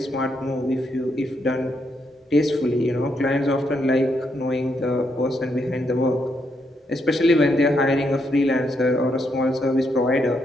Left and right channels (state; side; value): normal; both; correlation 0.78